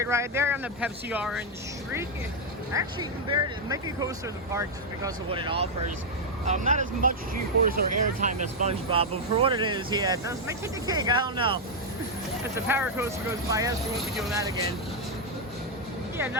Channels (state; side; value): normal; both; correlation 0.00